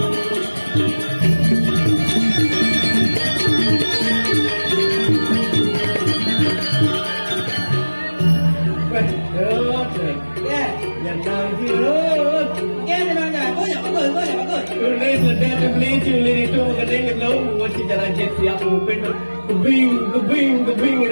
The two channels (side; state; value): both; inverted; correlation -1.00